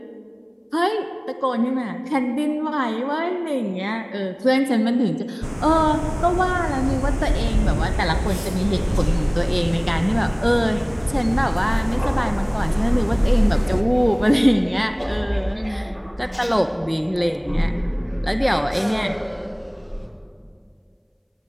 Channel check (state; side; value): identical; both; correlation 1.00